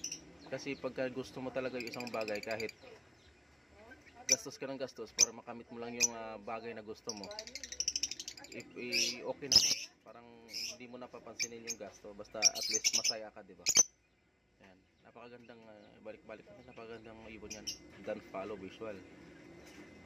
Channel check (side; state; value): both; normal; correlation 0.96